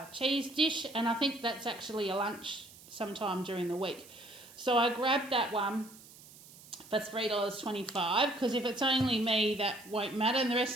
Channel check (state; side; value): noise; right; hiss, 20 dB below the sound